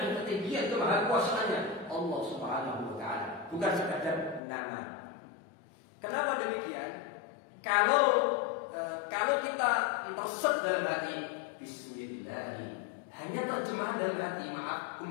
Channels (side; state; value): right; drops out; at 4.4 s